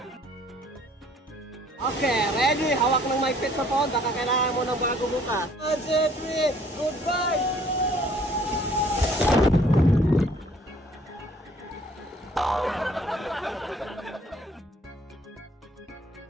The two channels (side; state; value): both; normal; correlation 0.58